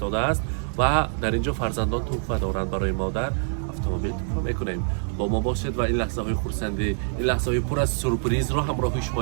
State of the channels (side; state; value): left; silent; 62 dB below the other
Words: است و در اینجا فرزندان تحفه دارند برای مادر. اتومبیل تحفه میکنیم. با ما باشید و این لحظه های خرسندی، این لحظه های پر از سورپرایز رو همراه